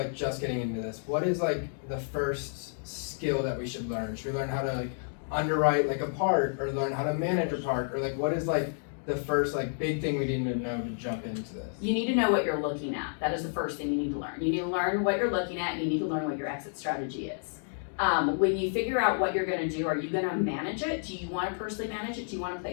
just getting into this, what is like the first skill that we should learn? Should we learn how to like underwrite like a park, or learn how to manage a park, or like what is like the first like big thing we need to know to jump into this? You need to know what you're looking at, that is the first thing you need to learn. You need to learn what you're looking at, and you need to learn what your exit strategy is. When you figure out what you're gonna do, are you gonna manage it? Do you wanna personally manage it? Do you wanna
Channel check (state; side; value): silent; right; digital silence